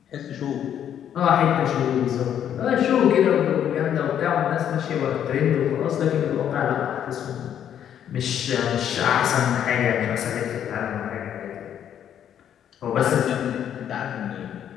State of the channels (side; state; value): right; quieter; 9.7 dB